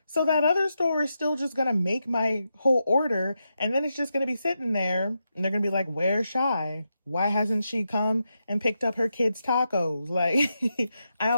So that other store is still just gonna make my whole order, and then it's just gonna be sitting there, and they're gonna be like, "Where's Shy? Why hasn't she come and picked up her kids' tacos?" Like, I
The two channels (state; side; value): inverted; both; correlation -0.86